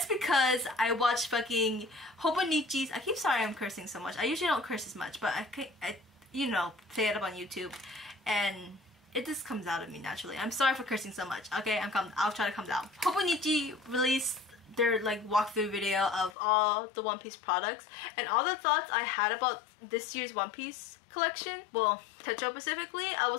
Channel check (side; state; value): right; drops out; at 16.4 s